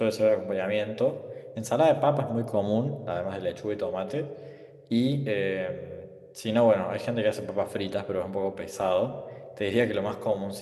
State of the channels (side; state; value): both; identical; correlation 1.00